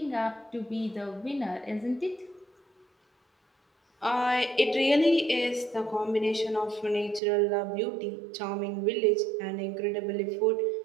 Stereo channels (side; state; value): left; drops out; at 7.2 s